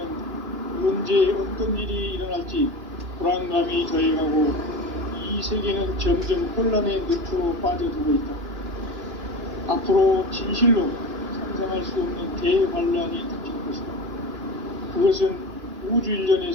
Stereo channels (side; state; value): left; late; 2.9 ms